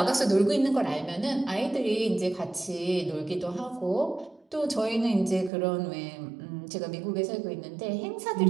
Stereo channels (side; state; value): left; drops out; at 5.5 s